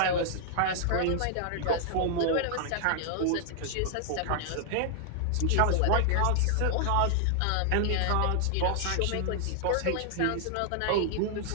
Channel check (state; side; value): different; both; correlation 0.00